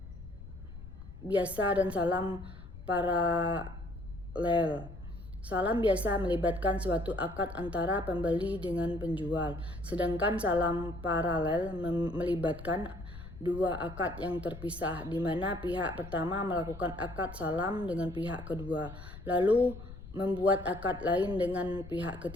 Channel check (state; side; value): noise; left; rumble, 13 dB below the sound